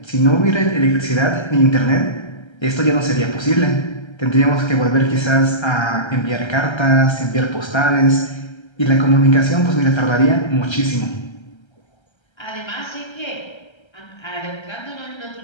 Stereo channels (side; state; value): right; late; 1.3 ms